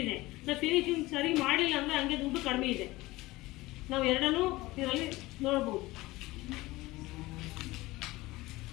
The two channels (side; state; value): right; quieter; 19.7 dB